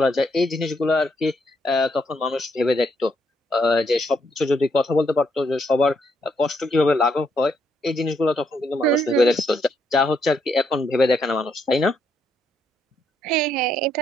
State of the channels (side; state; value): both; normal; correlation 0.75